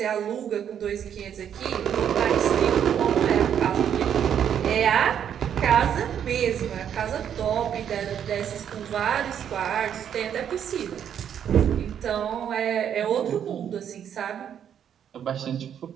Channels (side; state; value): left; quieter; 9.0 dB